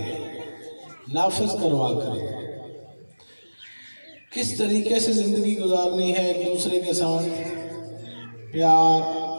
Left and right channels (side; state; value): both; inverted; correlation -1.00